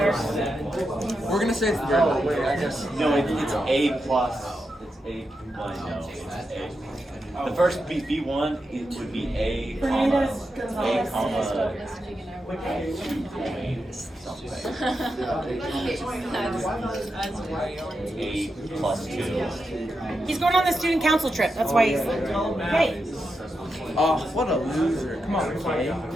We're gonna say it's the very middle. I guess. No, it's A plus. It's A. No, it's A. The first B1, it would be A, comma, A, comma, A plus 2. He's going on the student council trip. That's why he's okay. Oh, what a loser. Come on, Kay.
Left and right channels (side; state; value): both; normal; correlation 0.87